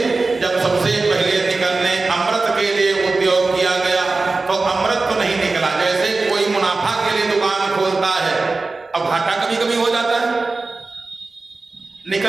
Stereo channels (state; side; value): quieter; left; 3.6 dB